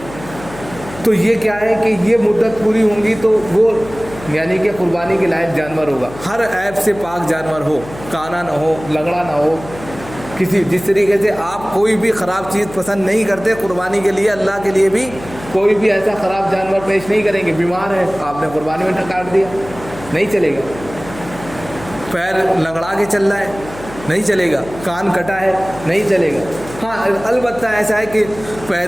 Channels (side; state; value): left; noise; hum, 16 dB below the sound